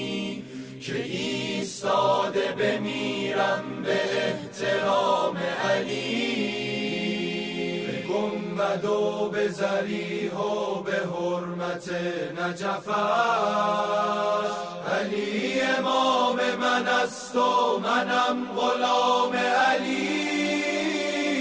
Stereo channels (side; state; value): both; identical; correlation 1.00